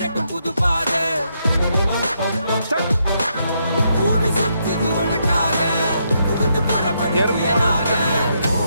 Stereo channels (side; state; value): both; inverted; correlation -0.78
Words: புது பாதை பூமி சுத்துது உனக்காக புகுந்து புறப்படியாக